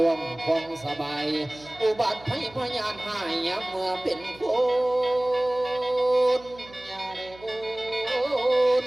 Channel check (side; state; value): right; noise; hum, 22 dB below the sound